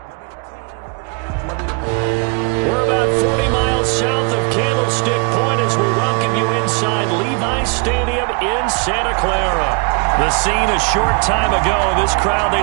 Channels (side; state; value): left; quieter; 32.9 dB